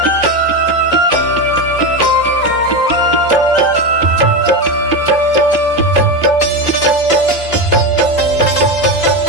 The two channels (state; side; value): late; right; 2.7 ms